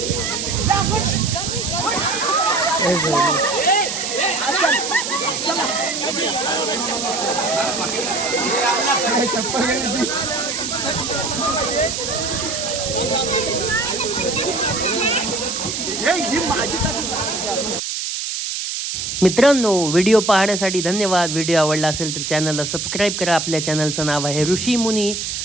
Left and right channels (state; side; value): noise; right; hiss, 3 dB below the sound